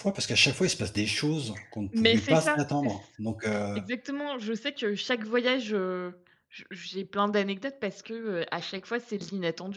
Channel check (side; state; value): both; identical; correlation 1.00